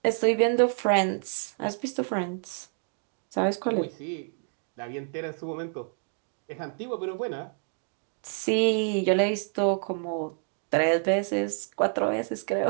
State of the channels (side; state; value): left; silent; 59 dB below the other